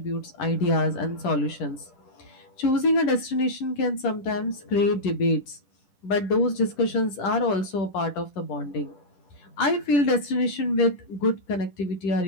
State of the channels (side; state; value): right; late; 10 ms